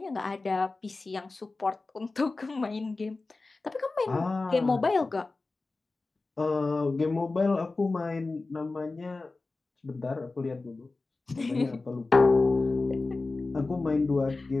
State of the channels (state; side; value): quieter; right; 3.5 dB